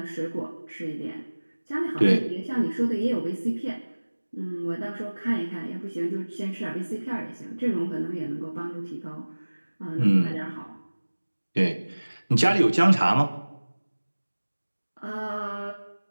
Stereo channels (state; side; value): inverted; both; correlation -1.00